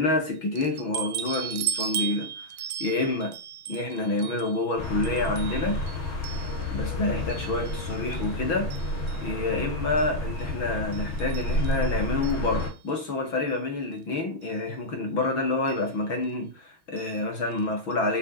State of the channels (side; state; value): right; late; 6.2 ms